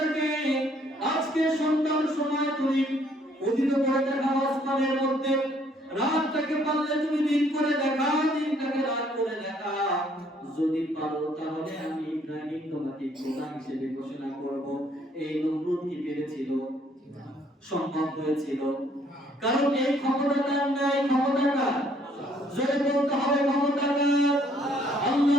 আজকে সন্ধ্যার সময় তুমি উদিত করে দেখাও আসমানের মধ্যে। রাতটাকে পারলে তুমি দিন করে দেখাও, দিনটাকে রাত করে দেখাও। যদি পারো তাহলে আমি ইব্রাহিম তোমাকে খোদা হিসেবে ঘোষণা করব। এই নমরুদ কি পেরেছিল? সম্ভব হয়েছিল? কারণ এই ক্ষমতাটা নাই, ক্ষমতাটা জোরে বলতে হবে, ক্ষমতাটা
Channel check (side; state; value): both; normal; correlation 0.65